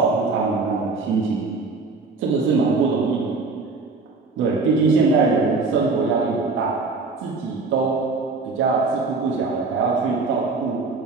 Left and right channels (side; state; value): left; quieter; 4.0 dB